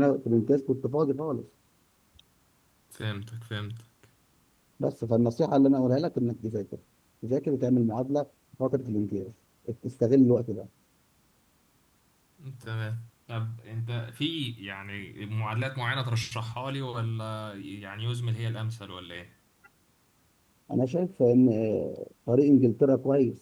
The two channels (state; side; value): identical; both; correlation 1.00